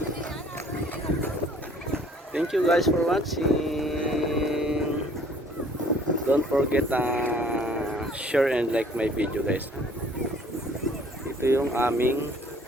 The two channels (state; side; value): normal; both; correlation 0.56